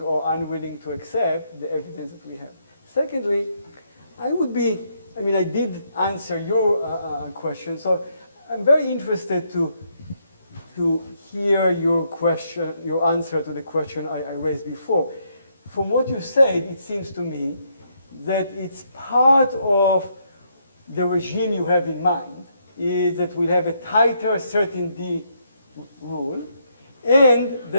or unwilling to accept the evidence that we have. Secondly, I did answer your question, so I'm very interested to hear your question, your answer to the question I raised before. From what you said, it seems to me that it's part of the regime you have in mind, is that we'll have a tighter certainty rule, and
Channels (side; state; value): both; inverted; correlation -0.74